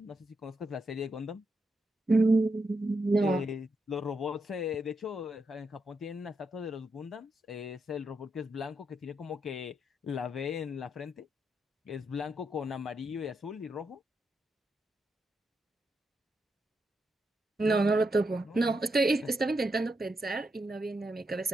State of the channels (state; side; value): normal; both; correlation 0.82